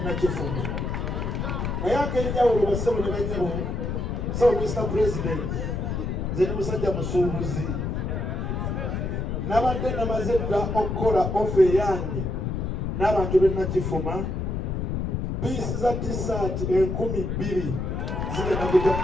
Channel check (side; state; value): left; noise; rumble, 2 dB below the sound